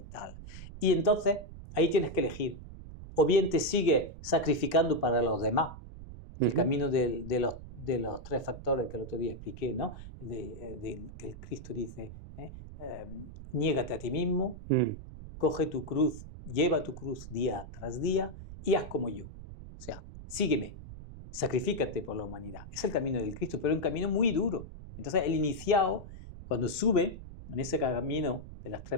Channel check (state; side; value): noise; right; rumble, 13 dB below the sound